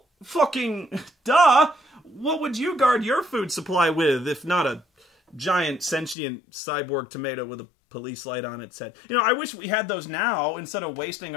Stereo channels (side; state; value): right; drops out; at 6.2 s